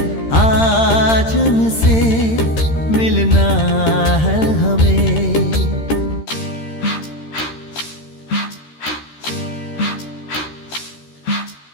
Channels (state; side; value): late; right; 13 ms